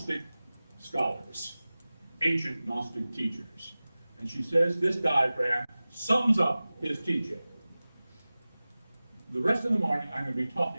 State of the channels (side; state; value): both; inverted; correlation -0.98